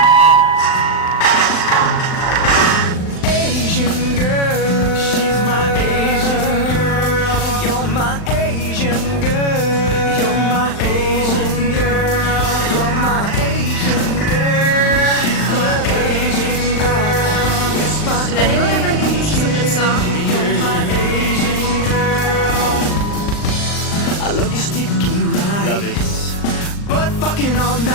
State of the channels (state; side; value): late; right; 39 ms